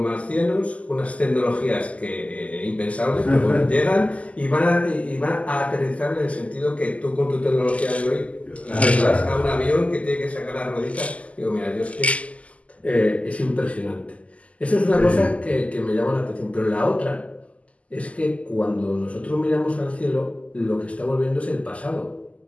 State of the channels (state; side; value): late; right; 0.066 ms